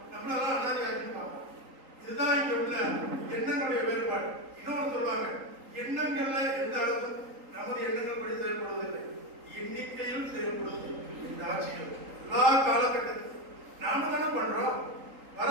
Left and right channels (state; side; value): late; left; 3.8 ms